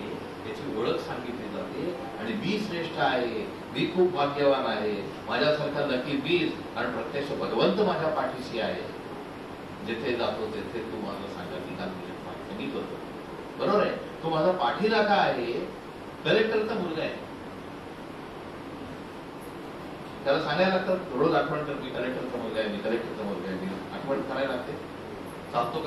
याची ओळख सांगितली जाते. आणि मी श्रेष्ठ आहे, मी खूप भाग्यवान आहे, माझ्यासारखा लकी मीच, आणि प्रत्यक्ष भगवंत माझ्या पाठीशी आहे. जिथे जातो तिथे तू माझं सांगा मी करतो. बरोबर आहे. तो माझा पाठीराखा आहे. कलेक्टरचा मुलगा आहे, त्याला सांगायला लागतं रोज आठवण कर, मी कलेक्टरचा मुलगा आहे, मी कलेक्टरचा मुलगा आहे. मी आठवण करायला लागते. चालतो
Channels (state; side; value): identical; both; correlation 1.00